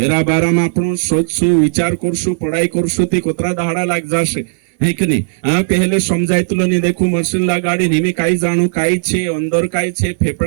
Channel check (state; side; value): silent; left; 65 dB below the other